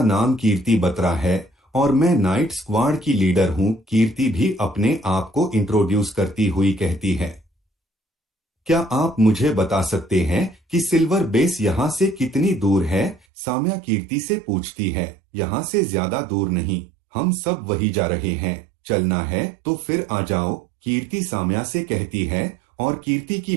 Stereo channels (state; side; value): drops out; left; at 13.2 s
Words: नाम कीर्ति बत्रा है और मैं नाइट स्क्वाड की लीडर हूँ। कीर्ति भी अपने आप को इंट्रोड्यूस करती हुई कहती है। क्या आप मुझे बता सकते हैं कि सिल्वर बेस यहाँ से कितनी दूर है? साम्या कीर्ति से पूछती है। यहाँ से ज्यादा दूर नहीं, हम सब वही जा रहे हैं। चलना है तो फिर आ जाओ, कीर्ति साम्या से कहती है। और कीर्ति की